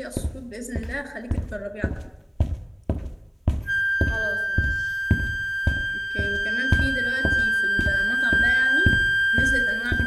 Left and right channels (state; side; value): identical; both; correlation 1.00